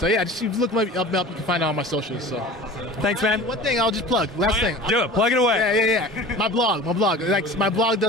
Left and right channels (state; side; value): normal; both; correlation 0.39